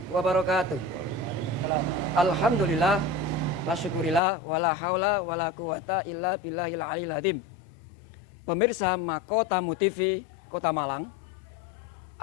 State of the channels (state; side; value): drops out; right; at 4.2 s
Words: wabarakatuh. Alhamdulillah wa syukurillah wala haula wala quwata illa billahil aliyil azim. Pemirsa Mahkota TV Kota Malang,